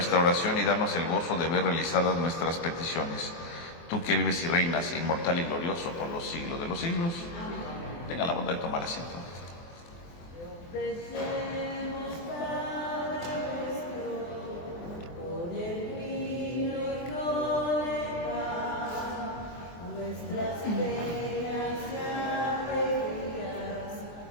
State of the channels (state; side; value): late; right; 23 ms